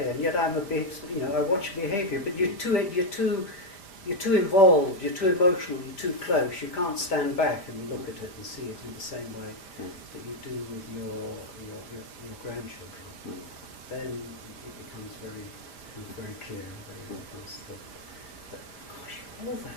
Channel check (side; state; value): right; late; 5.1 ms